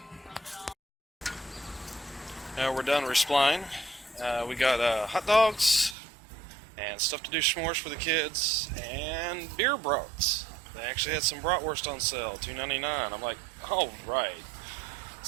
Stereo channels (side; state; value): left; drops out; at 6.0 s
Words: Now we're done resupplying. We got hot dogs and stuff to do s'mores for the kids and beer brats. They actually had some bratwurst on sale, $2.99. I'm like, all right.